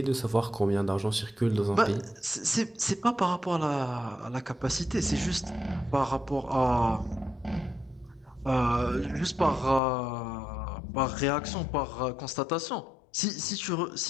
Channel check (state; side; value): drops out; right; at 9.8 s